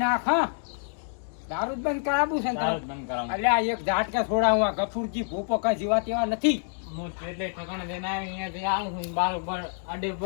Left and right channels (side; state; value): right; silent; 60 dB below the other